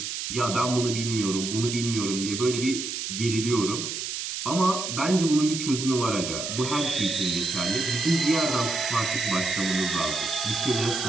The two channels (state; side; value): noise; right; hiss, 4 dB below the sound